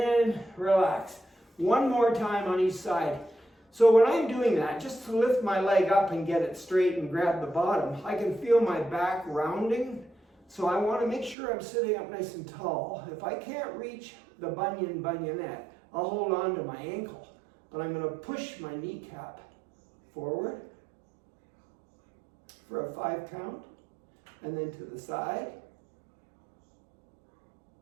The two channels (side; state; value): left; drops out; at 11.4 s